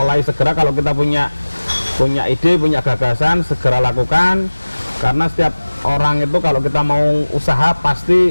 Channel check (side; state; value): both; inverted; correlation -1.00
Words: segera, kalau kita punya ide, punya gagasan, segera lakukan. Karena setiap orang itu kalau kita mau usaha,